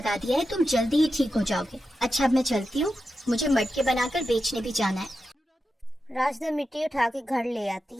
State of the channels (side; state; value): both; normal; correlation 0.90